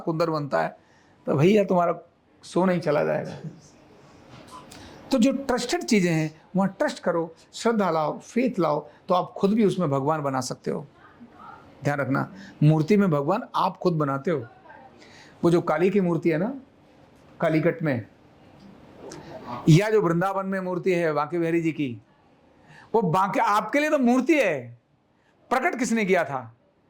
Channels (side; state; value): both; identical; correlation 1.00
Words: बनता है, तो भैया तुम्हारा सोना ही चला जाएगा। तो जो ट्रस्टेड चीजें हैं वहां ट्रस्ट करो, श्रद्धा लाओ, फेथ लाओ, तो आप खुद भी उसमें भगवान बना सकते हो। ध्यान रखना, मूर्ति में भगवान आप खुद बनाते हो। वो जो काली की मूर्ति है ना, कालीकट में, या जो वृंदावन में मूर्ति है बांके बिहारी जी की, वो बांके आपके लिए तो मूर्ति है। प्रकट किसने किया था?